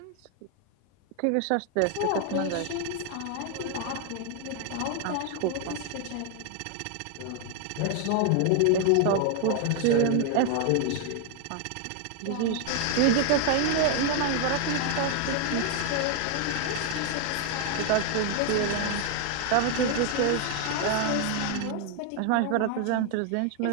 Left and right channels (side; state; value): both; different; correlation 0.00